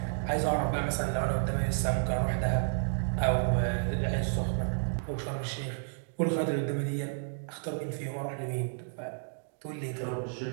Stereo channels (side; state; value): left; silent; digital silence